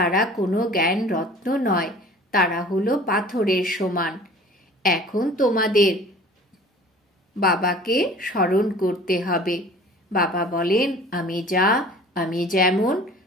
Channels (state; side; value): normal; both; correlation 0.46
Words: কোনো জ্ঞান রত্ন নয়, তারা হলো পাথরের সমান। এখন তোমাদের বাবাকে স্মরণ করতে হবে। বাবা বলেন, আমি যা, আমি যেমন,